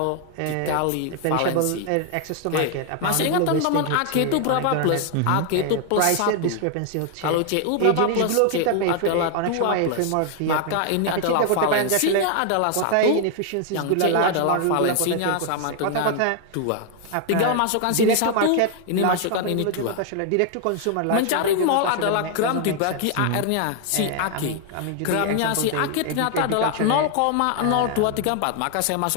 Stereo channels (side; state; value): both; different; correlation 0.00